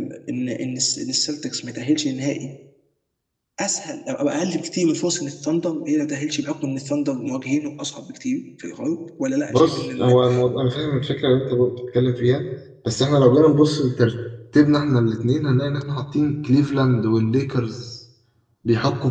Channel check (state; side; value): identical; both; correlation 1.00